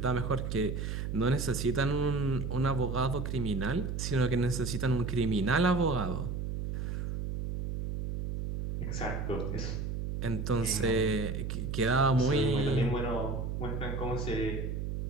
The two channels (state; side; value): noise; right; hum, 3 dB below the sound